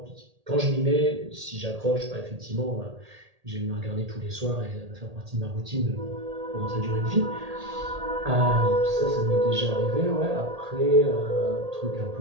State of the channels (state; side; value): late; left; 1.8 ms